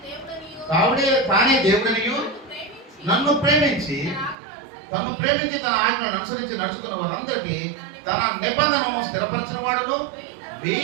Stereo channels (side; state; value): left; drops out; at 4.4 s